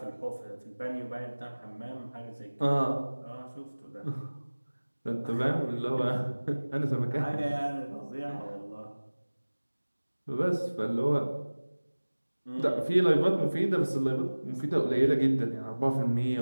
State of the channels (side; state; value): both; inverted; correlation -1.00